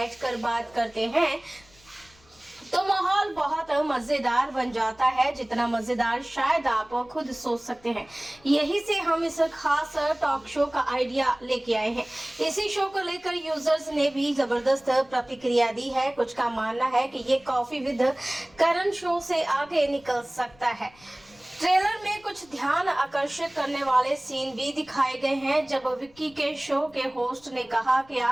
बात करते हैं तो माहौल बहुत मजेदार बन जाता है, जितना मजेदार शायद आप खुद सोच सकते हैं। यही से हम इस खास टॉक शो का आइडिया लेके आए हैं। इसी शो को लेकर यूजर्स ने भी जबरदस्त प्रतिक्रिया दी है। कुछ का मानना है कि ये कॉफी विद करण शो से आगे निकल सकता है। ट्रेलर में कुछ ध्यान आकर्षित करने वाले सीन भी दिखाए गए हैं, जब विक्की के शो के होस्ट ने कहा कि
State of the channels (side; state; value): left; noise; rumble, 28 dB below the sound